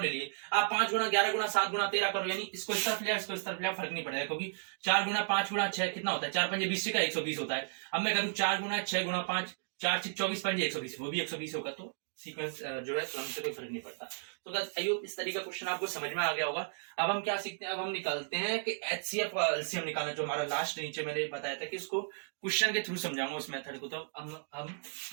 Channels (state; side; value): silent; left; digital silence